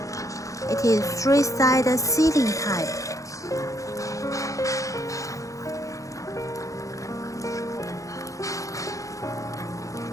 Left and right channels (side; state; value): right; late; 0.16 ms